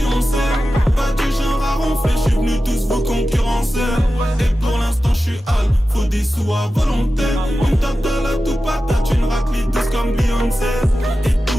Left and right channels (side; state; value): both; normal; correlation 0.93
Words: pas du genre à ronfler. J'suis venu tous vous concurrencer. Et pour l'instant j'suis hal, faut des sous à volonté. On me tape de la tout patate, une raclée douce comme Beyoncé. Et tous